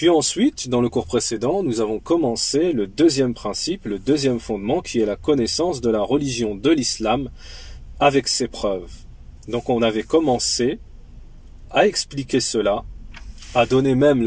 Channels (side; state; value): both; identical; correlation 1.00